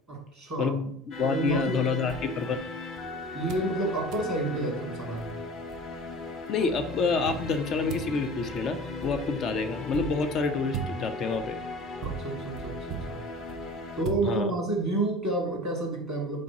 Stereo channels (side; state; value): both; normal; correlation 0.41